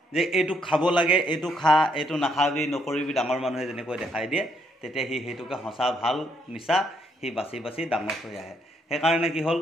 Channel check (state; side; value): normal; both; correlation 0.72